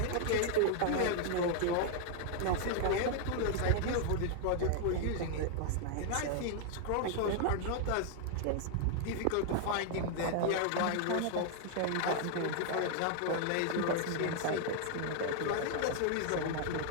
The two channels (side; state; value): both; different; correlation 0.00